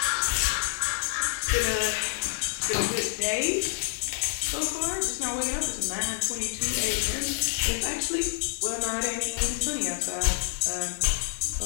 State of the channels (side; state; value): right; silent; 60 dB below the other